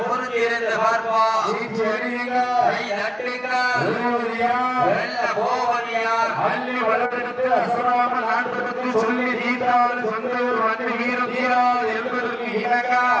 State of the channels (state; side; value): identical; both; correlation 1.00